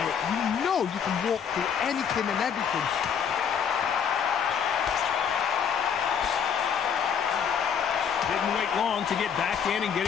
you know you can walk through anything and everything. Didn't wait long to get back in and get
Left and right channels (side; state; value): right; quieter; 7.5 dB